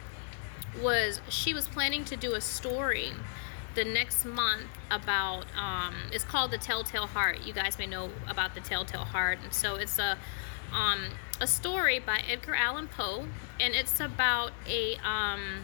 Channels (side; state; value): right; silent; digital silence